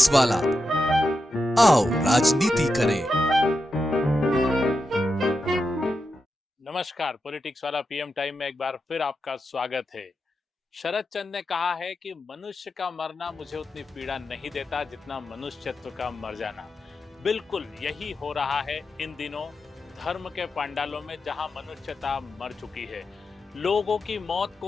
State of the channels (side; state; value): both; normal; correlation 0.88